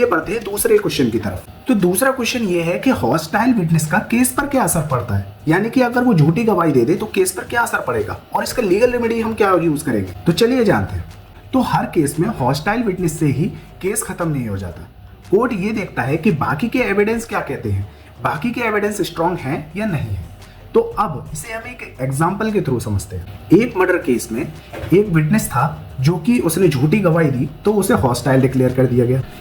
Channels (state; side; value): identical; both; correlation 1.00